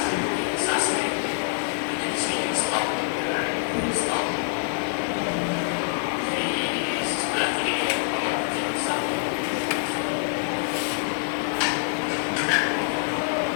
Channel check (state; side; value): silent; right; 61 dB below the other